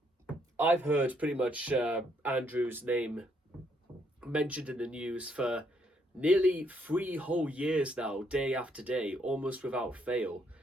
I've heard pretty much Andrew's name mentioned in the news for nearly 3 whole years now, day after day, almost without fail.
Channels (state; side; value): normal; both; correlation 0.72